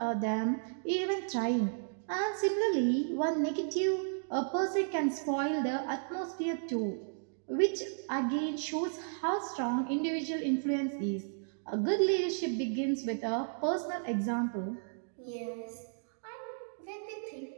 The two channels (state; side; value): silent; left; digital silence